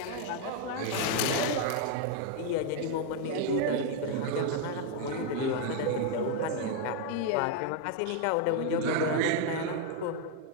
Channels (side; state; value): both; different; correlation 0.01